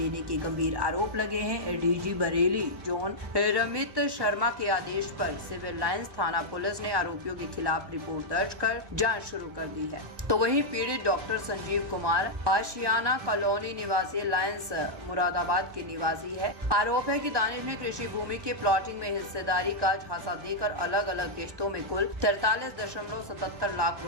के गंभीर आरोप लगे हैं। एडीजी बरेली जोन रमित शर्मा के आदेश पर सिविल लाइंस थाना पुलिस ने आरोपियों के खिलाफ रिपोर्ट दर्ज कर जांच शुरू कर दी है। तो वहीं पीड़ित डॉक्टर संजीव कुमार आशियाना कॉलोनी निवासी लायंस मुरादाबाद के निवासी है। आरोप है कि दानिश ने कृषि भूमि के प्लॉटिंग में हिस्सेदारी का झांसा देकर अलग अलग किश्तों में कुल 43.77 लाख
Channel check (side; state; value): left; late; 1.2 ms